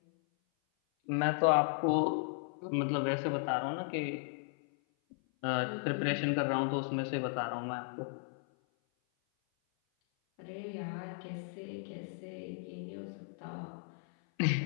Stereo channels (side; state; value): right; silent; 54 dB below the other